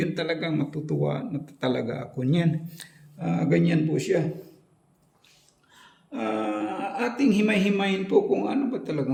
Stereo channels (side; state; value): both; identical; correlation 1.00